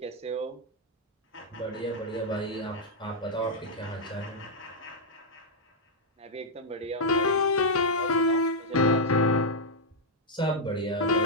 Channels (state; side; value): normal; both; correlation -0.04